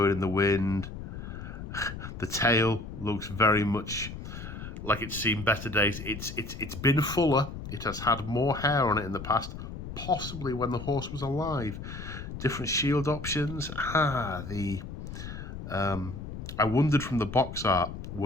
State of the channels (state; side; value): noise; left; rumble, 9 dB below the sound